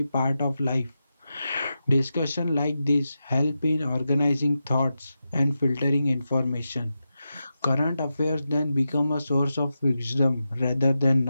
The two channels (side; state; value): both; inverted; correlation -0.90